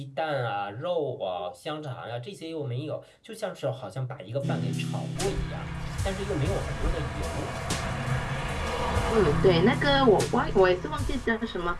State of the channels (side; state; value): both; identical; correlation 1.00